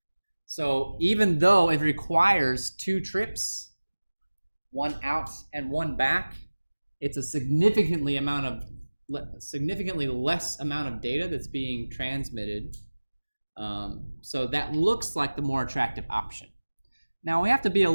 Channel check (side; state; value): both; inverted; correlation -1.00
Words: So even though it requires 2 trips, 1 out and 1 back, it's a significantly less amount of data that's being transmitted. So that looks like the more attractive option. Now we have to be a